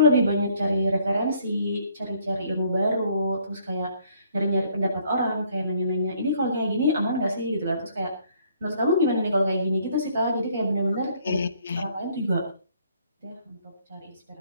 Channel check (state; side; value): inverted; both; correlation -0.64